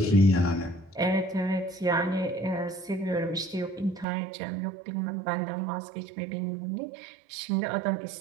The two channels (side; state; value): left; drops out; at 4.0 s